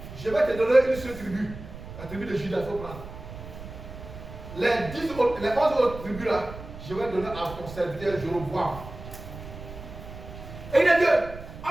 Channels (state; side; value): noise; right; rumble, 13 dB below the sound